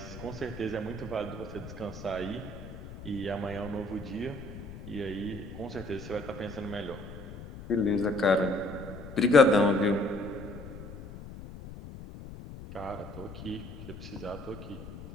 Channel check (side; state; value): left; noise; rumble, 12 dB below the sound